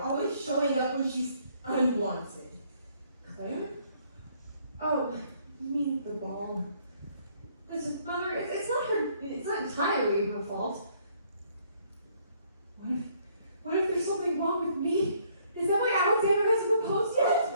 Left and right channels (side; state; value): both; inverted; correlation -0.65